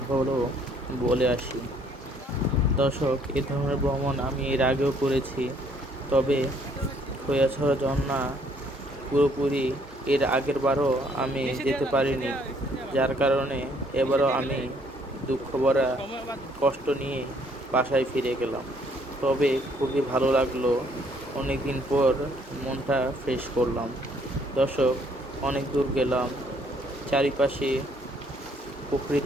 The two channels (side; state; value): both; normal; correlation 0.64